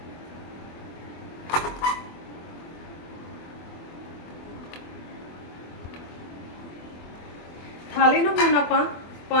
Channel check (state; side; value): late; right; 24 ms